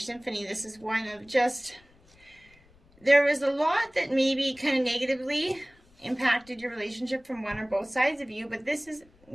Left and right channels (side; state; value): left; noise; rumble, 30 dB below the sound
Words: symphony. This is one of just, there was a lot that maybe kind of negatively impacted your relationship from one or both sides of you, but this is